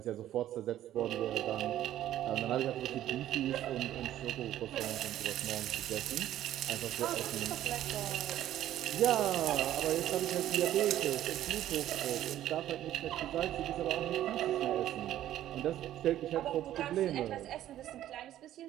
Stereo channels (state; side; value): quieter; left; 12.6 dB